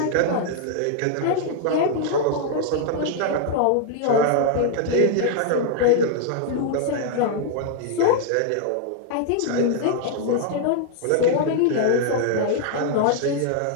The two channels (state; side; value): different; both; correlation 0.00